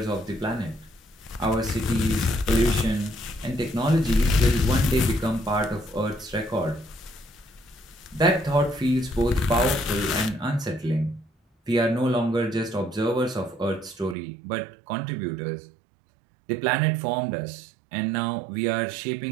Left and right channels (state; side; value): drops out; left; at 14.2 s